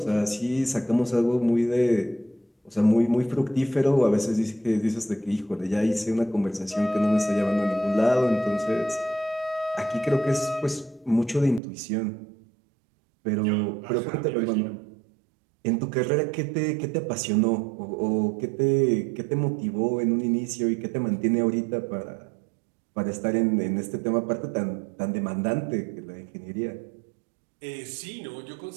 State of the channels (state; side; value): drops out; left; at 11.6 s